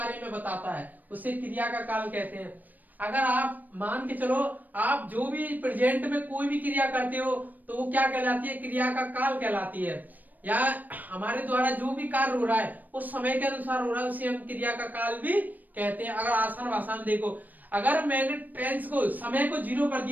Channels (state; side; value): late; left; 0.084 ms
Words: में बताता है, उसे क्रिया का काल कहते हैं। अगर आप मान के चलो, आप जो भी प्रेजेंट में कोई भी क्रिया करते हो तो वो क्या कहलाती है, क्रिया का काल कहलाती है। या हमारे द्वारा जो भी कार्य हो रहा है वो समय के अनुसार हो रहा है, उसे हम क्रिया का काल भी कहते हैं। अगर आसान भाषा में देखो, अगर मैंने टेंस को, समय को 0 कर